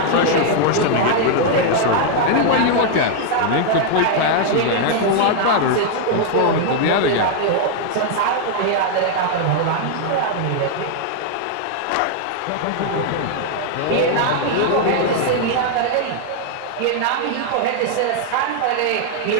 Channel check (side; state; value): both; different; correlation 0.00